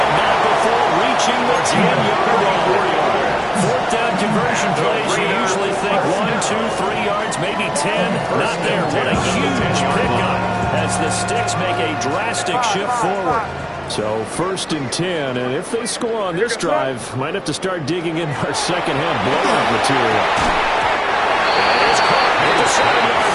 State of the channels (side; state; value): both; identical; correlation 1.00